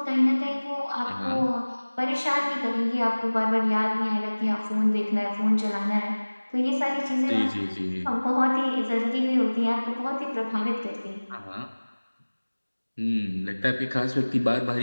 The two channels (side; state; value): both; inverted; correlation -1.00